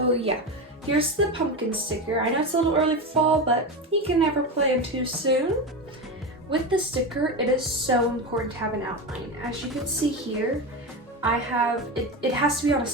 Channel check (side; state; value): both; normal; correlation 0.19